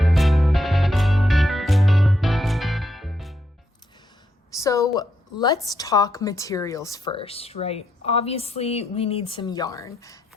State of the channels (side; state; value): both; normal; correlation 0.79